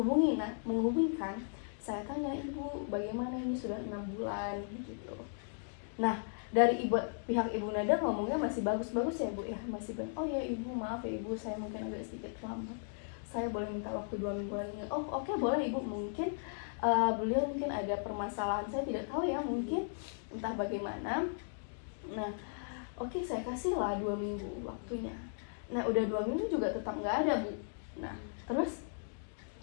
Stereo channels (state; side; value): silent; right; digital silence